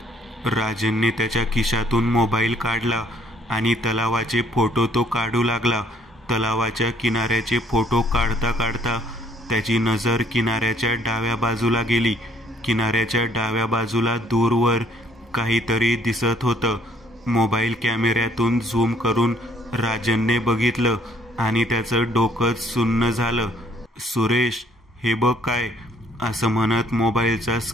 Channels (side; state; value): both; normal; correlation 0.63